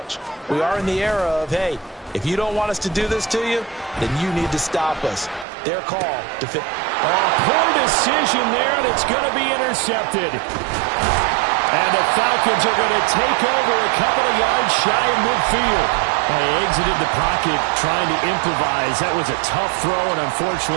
We are in the era of, hey, if you don't want us to do this to you, then you need to stop us. Their call to fit. Poor decision there, and it's going to be intercepted. And the Falcons are going to take over a couple of yards shy of midfield. They exited the pocket trying to improvise. That was a tough throw, and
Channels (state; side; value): drops out; left; at 5.5 s